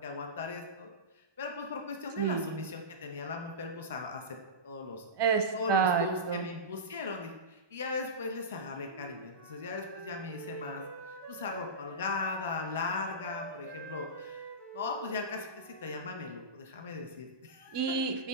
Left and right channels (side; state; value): left; late; 1.2 ms